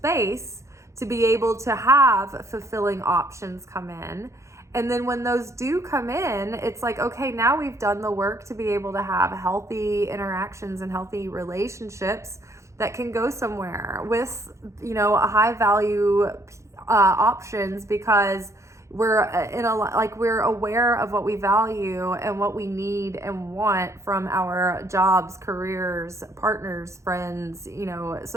to be able to have fulfilling options come in. And then when those do come in, it's like, okay, now we've done the work to be able to have healthy interactions and healthy relationships that can go somewhere with, a high value options, because we're we're aware of what we value and what we need and want from our jobs, careers, partners, friends,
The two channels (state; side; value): late; left; 0.14 ms